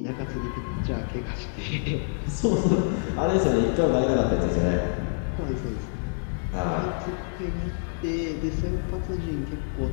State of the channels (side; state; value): right; silent; digital silence